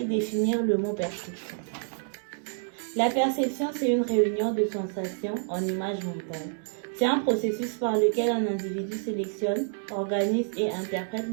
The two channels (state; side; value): silent; left; digital silence